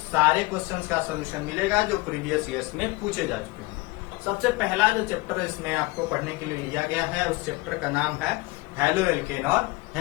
क्वेश्चंस का सोल्यूशन मिलेगा जो प्रीवियस ईयर्स में पूछे जा चुके हैं। सबसे पहला जो चैप्टर इसमें आपको पढ़ने के लिए लिया गया है उस चैप्टर का नाम है हेलो एल्केन और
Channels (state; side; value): quieter; right; 22.5 dB